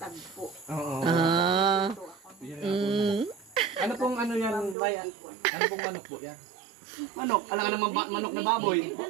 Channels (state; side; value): drops out; left; at 4.8 s